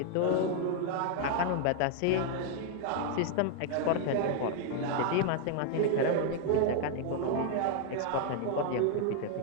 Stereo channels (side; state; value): both; different; correlation 0.00